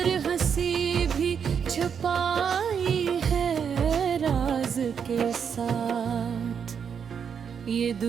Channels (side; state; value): left; quieter; 7.2 dB